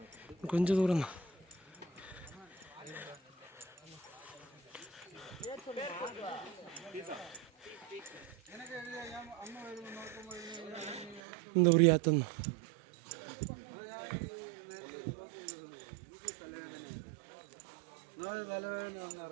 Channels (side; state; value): left; drops out; at 11.2 s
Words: கொஞ்சம் தூரம் தான் இந்த ஒரு யாத்தம் தான்